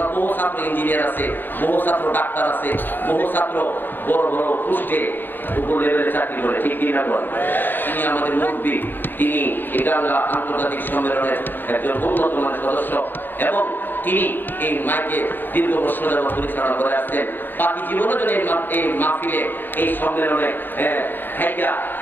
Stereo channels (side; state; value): right; late; 0.093 ms